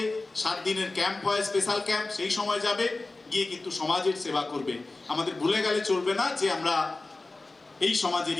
7 দিনের ক্যাম্প হয়, স্পেশাল ক্যাম্প, সেই সময় যাবে, গিয়ে কিন্তু সমাজের সেবা করবে। আমাদের ভুলে গেলে চলবে না যে আমরা এই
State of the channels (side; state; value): right; quieter; 3.3 dB